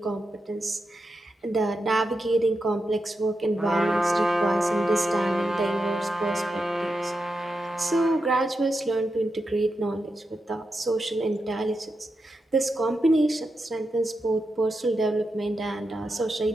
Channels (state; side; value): normal; both; correlation 0.88